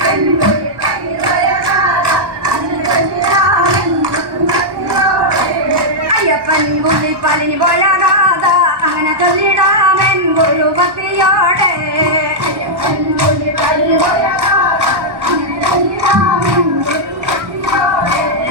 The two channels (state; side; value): late; left; 1.2 ms